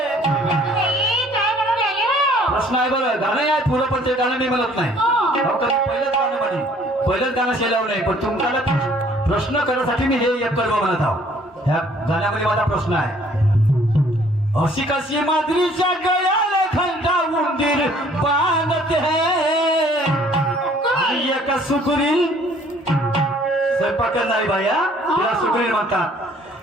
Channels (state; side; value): normal; both; correlation 0.58